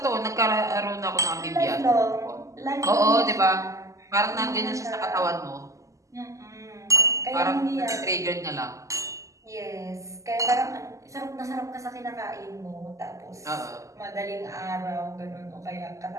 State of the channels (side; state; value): left; late; 0.16 ms